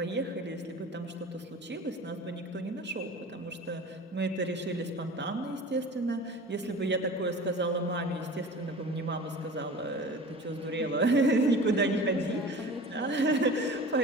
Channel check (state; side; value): normal; both; correlation 0.38